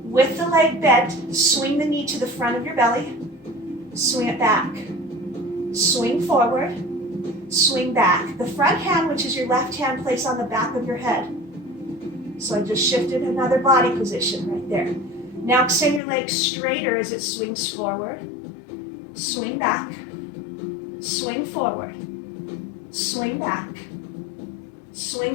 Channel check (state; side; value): drops out; right; at 16.0 s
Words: With the leg bent, swing the knee to the front of your belly. Swing it back. Swing forward. Swing back. The front hand, which is your left hand, place on the back of your head. So I just shifted another body position right there. Now extend your legs straighter as it swings forward. Swing back. Swing forward. Swing back.